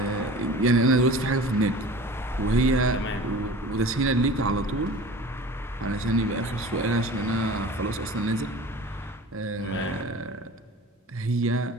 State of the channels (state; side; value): normal; both; correlation 0.39